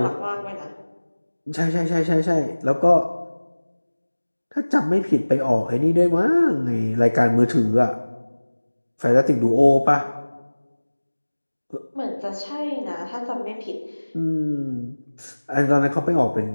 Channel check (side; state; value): both; inverted; correlation -1.00